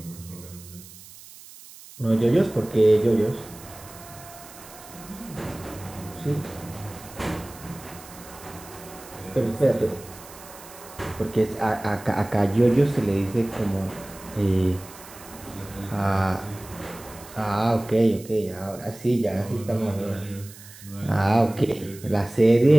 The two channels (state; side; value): noise; right; hiss, 18 dB below the sound